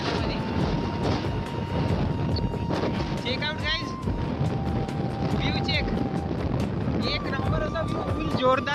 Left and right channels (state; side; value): identical; both; correlation 1.00